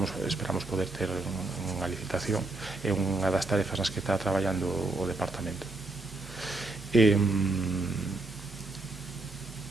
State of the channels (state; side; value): quieter; left; 3.0 dB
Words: poder ter unha licitación. É unha das tarefas nas que está traballando o departamento.